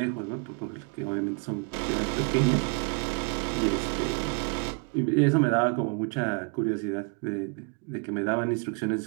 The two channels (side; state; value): left; quieter; 36.0 dB